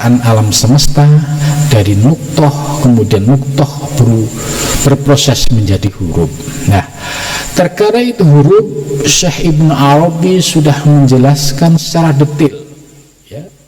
alam semesta, dari nuqthah, kemudian nuqthah berproses menjadi huruf. Nah, terkadang itu huruf Syekh Ibn Arabi sudah menjelaskan secara detail, ya,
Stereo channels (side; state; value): both; identical; correlation 1.00